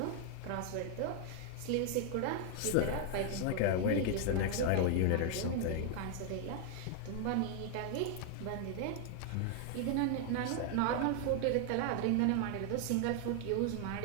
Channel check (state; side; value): different; both; correlation 0.00